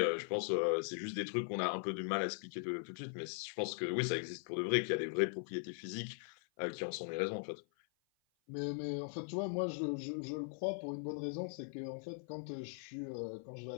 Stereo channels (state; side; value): silent; right; 51 dB below the other